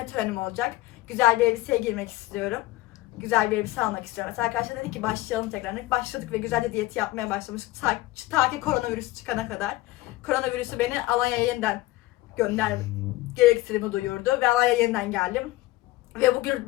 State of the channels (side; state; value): right; quieter; 18.1 dB